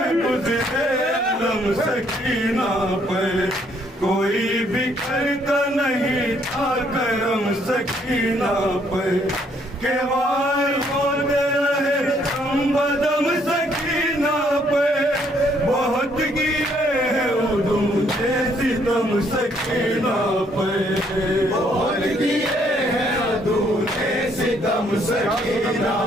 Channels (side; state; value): both; normal; correlation 0.68